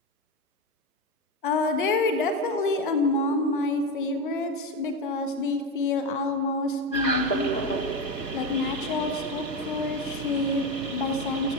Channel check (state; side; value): normal; both; correlation 0.16